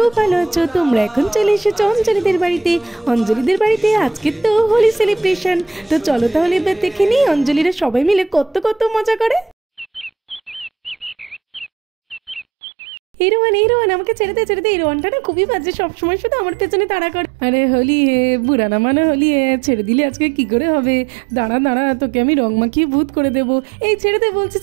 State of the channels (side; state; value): left; drops out; at 12.5 s